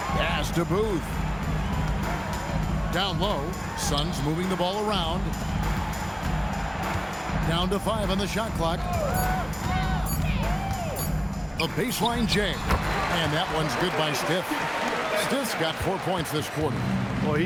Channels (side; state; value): both; identical; correlation 1.00